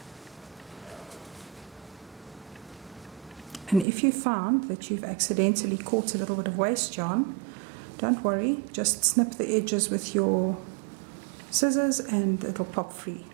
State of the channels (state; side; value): drops out; left; at 3.9 s